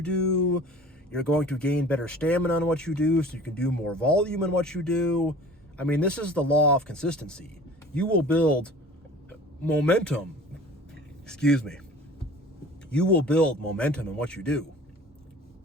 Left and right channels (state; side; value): normal; both; correlation 0.44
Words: do. You're going to gain better stamina in what you do so you can do more volume in what you do. I mean, this is the law of consistency. You will build momentum. You will build momentum in what you do